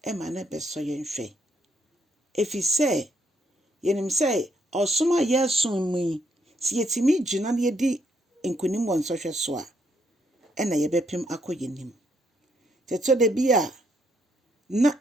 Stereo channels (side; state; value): both; normal; correlation 0.73